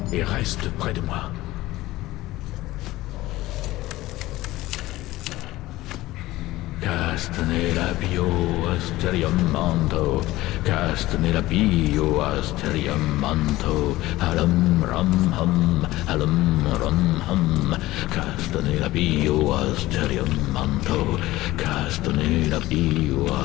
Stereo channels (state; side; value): quieter; right; 17.5 dB